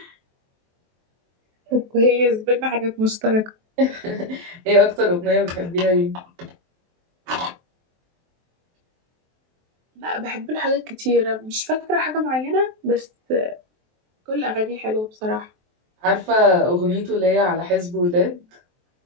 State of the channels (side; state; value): left; late; 23 ms